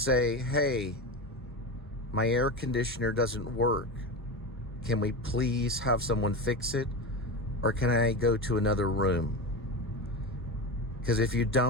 hey, my air conditioner doesn't work. Can we please have someone fix it? Or can I go to another room? Because if you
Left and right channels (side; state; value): both; normal; correlation 0.22